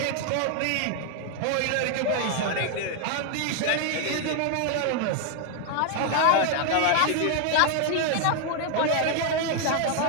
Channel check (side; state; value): both; different; correlation 0.00